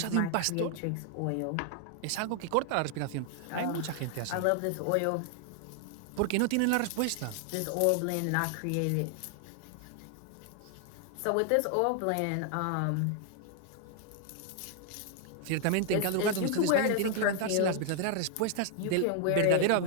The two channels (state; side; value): different; both; correlation 0.00